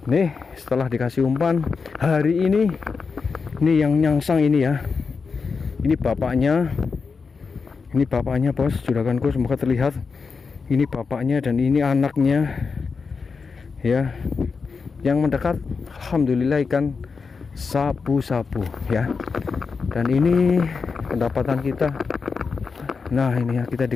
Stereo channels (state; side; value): quieter; right; 5.0 dB